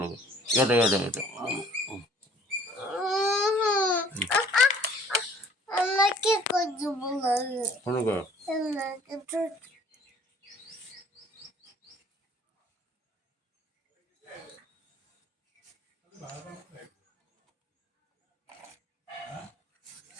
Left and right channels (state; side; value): normal; both; correlation 0.55